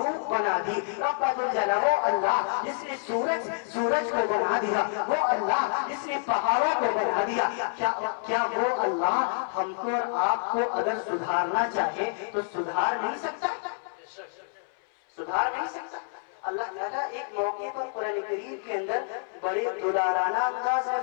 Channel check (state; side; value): silent; right; 59 dB below the other